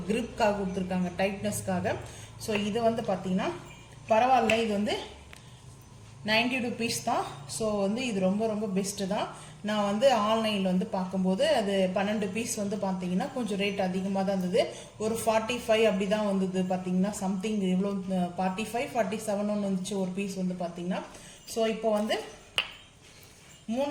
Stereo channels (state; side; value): identical; both; correlation 1.00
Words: கிரிப்காக கொடுத்துருக்காங்க, டைட்னஸ்க்காக. ஸோ இது வந்து பார்த்தீங்கன்னா பரவாயில்ல. இது வந்து 90 rupees தான். ஸோ வந்து இது ரொம்ப ரொம்ப பெஸ்ட்டு தான். நான் வந்து ஆன்லைனில் வந்து பார்க்கும்போது அது 12 பீஸ் வந்து பார்த்தீங்கன்னா கொஞ்சம் ரேட் அதிகமாக தான் இருந்தது. ஒரு 45 அப்படி தான் வந்தது பார்த்தீங்கன்னா. சம்திங் எவ்வளோ 45, 47 ஒன்று வந்துச்சு ஒரு பீஸ் வந்து பார்த்தீங்கன்னா. ஸோ இப்போ வந்து